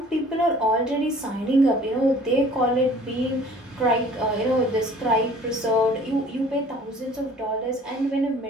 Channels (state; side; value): normal; both; correlation 0.51